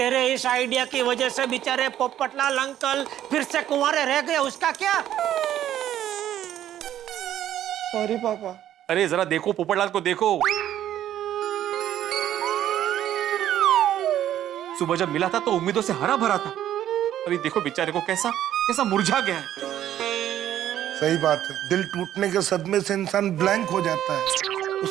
इस आइडिया की वजह से बेचारे पोपटलाल अंकल फिर से कुंवारे रह गए, उसका क्या? सॉरी पापा। अरे जरा देखो, पोपटलाल को देखो। सुबह जब मिला था तो उम्मीदों से हरा भरा था, अभी देखो बेचारे को कैसा कैसा मुरझा गया है। सही बात है, दिल टूटने के सदमे से इंसान ब्लैंक हो जाता है,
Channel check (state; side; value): quieter; left; 11.6 dB